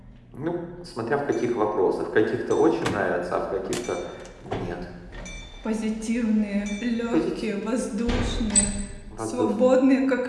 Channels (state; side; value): identical; both; correlation 1.00